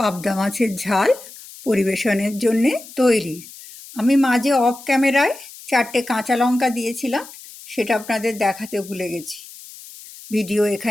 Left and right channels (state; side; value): noise; left; hiss, 17 dB below the sound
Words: মাছের ঝাল পরিবেশনের জন্যে তৈরি। আমি মাঝে অফ ক্যামেরায় 4টে কাঁচা লঙ্কা দিয়েছিলাম, সেটা আপনাদের দেখাতে ভুলে গেছি। ভিডিও